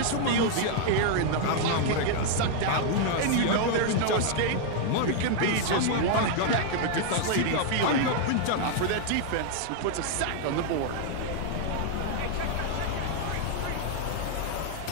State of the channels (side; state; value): both; different; correlation 0.00